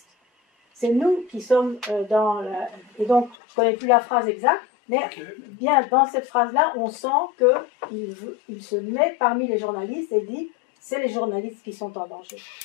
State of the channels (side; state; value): right; drops out; at 3.4 s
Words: C'est nous qui sommes dans la... » Et donc, je ne connais plus la phrase exacte, mais bien dans cette phrase-là, on sent qu'il se met parmi les journalistes et dit « C'est les journalistes qui sont en danger.